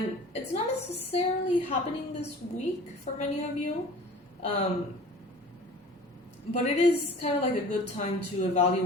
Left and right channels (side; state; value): both; normal; correlation 0.44